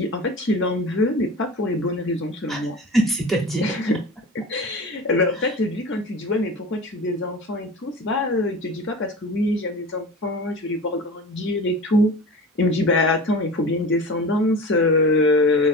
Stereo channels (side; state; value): both; normal; correlation 0.33